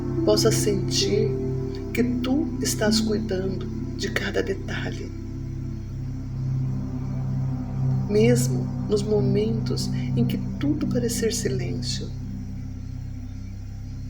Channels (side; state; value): both; identical; correlation 1.00